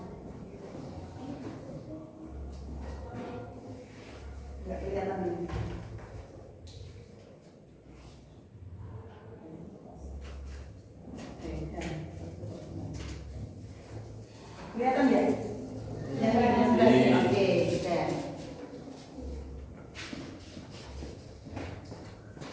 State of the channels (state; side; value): identical; both; correlation 1.00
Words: nggak kelihatan ini. Kelihatan ya? Oke, kita.